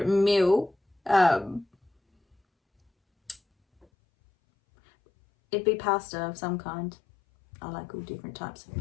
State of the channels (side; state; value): right; drops out; at 3.9 s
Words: meal. It'd be pasta of some kind. I like all different types of